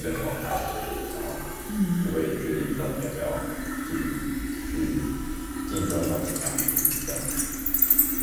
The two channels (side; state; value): both; identical; correlation 1.00